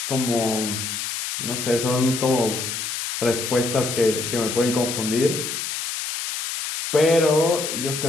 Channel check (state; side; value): noise; left; hiss, 4 dB below the sound